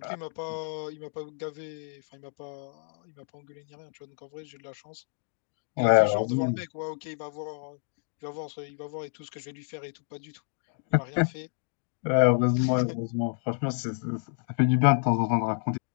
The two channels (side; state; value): right; silent; 58 dB below the other